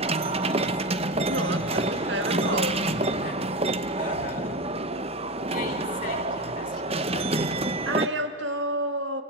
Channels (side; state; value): both; normal; correlation 0.20